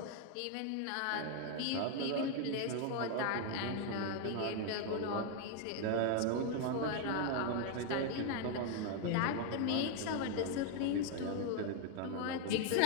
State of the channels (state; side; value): different; both; correlation 0.00